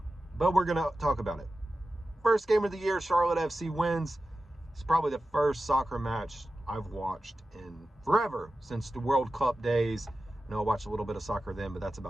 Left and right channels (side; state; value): both; normal; correlation 0.93